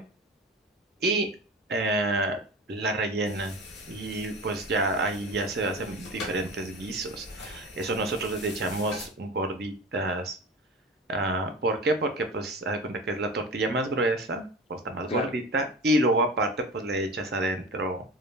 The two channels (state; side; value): normal; both; correlation 0.32